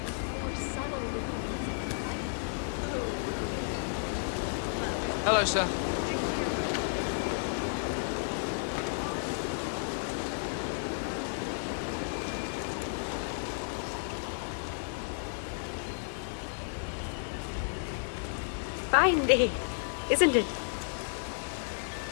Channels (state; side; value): silent; right; digital silence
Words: more subtle Hello, sir. Fine day, isn't it?